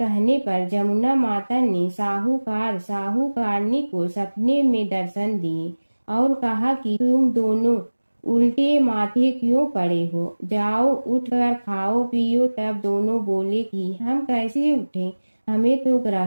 पर जमुना माता ने साहूकारनी को सपने में दर्शन दिए और कहा कि तुम दोनों उल्टे माथे क्यों पड़े हो, जाओ उठकर खाओ पियो। तब दोनों बोले कि हम कैसे उठे, हमें तो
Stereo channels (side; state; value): both; inverted; correlation -1.00